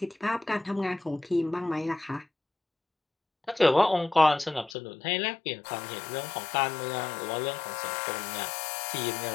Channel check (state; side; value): drops out; right; at 4.8 s